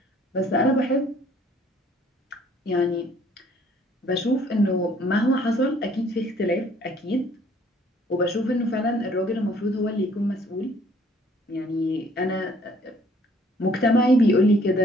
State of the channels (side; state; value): both; normal; correlation 0.59